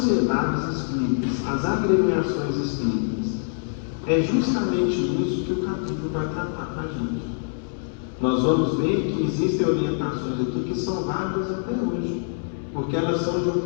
espíritas, as agremiações espíritas? É justamente isso que o capítulo vai tratar para a gente. Nós vamos ver que existem orientações aqui que são válidas até hoje, porque elas são de um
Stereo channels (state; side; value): silent; right; digital silence